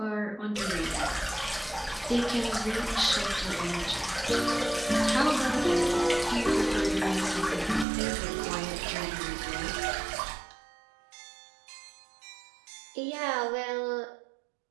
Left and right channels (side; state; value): left; drops out; at 7.9 s